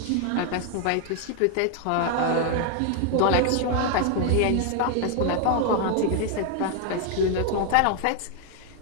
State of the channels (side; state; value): both; different; correlation 0.00